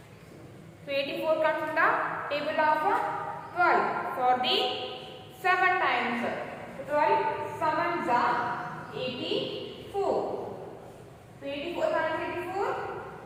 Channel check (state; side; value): identical; both; correlation 1.00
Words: So 84 comes from the table of 12 for the 7 times. So 12 sevens are 84. So 84 minus 84,